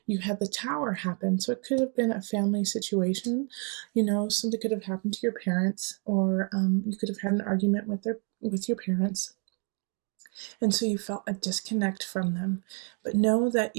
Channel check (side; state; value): left; quieter; 38.3 dB